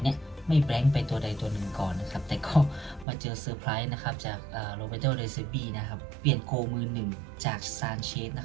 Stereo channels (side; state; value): left; drops out; at 3.1 s